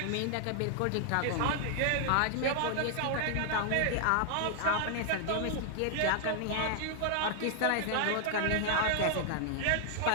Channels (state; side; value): different; both; correlation 0.00